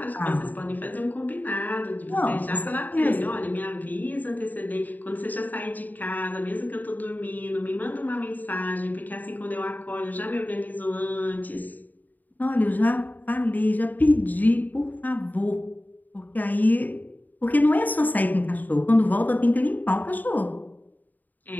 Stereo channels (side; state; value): right; late; 0.084 ms